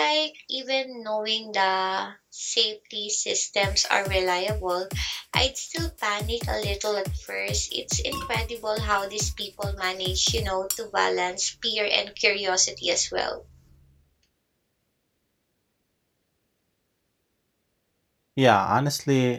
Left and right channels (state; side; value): identical; both; correlation 1.00